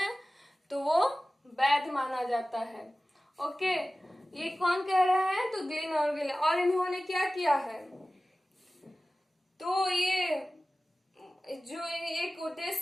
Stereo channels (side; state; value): both; normal; correlation 0.97